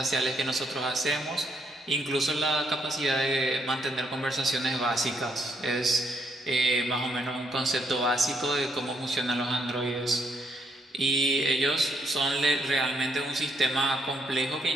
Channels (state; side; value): normal; both; correlation 0.74